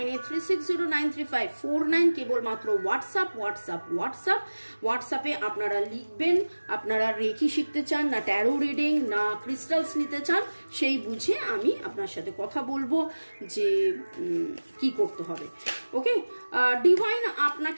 কেবলমাত্র হোয়াটসঅ্যাপে আপনারা লিখবেন আপনারা রেকি শিখতে চান না ট্যারো রিডিং না ক্রিস্টালস নিতে চান, সেই বুঝে আমি আপনার সাথে কথা বলবো যে কি করতে হবে। ওকে, ডিভাইন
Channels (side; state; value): both; inverted; correlation -1.00